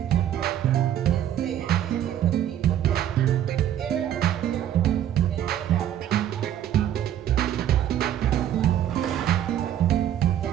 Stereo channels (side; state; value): left; quieter; 11.0 dB